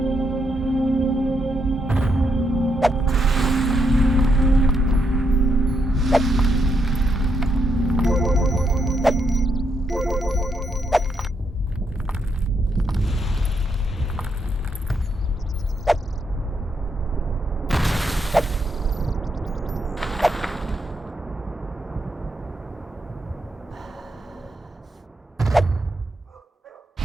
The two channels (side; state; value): both; normal; correlation 0.79